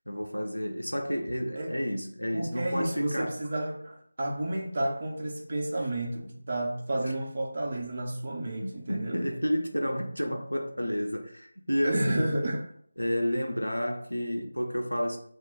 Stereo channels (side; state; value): both; inverted; correlation -0.97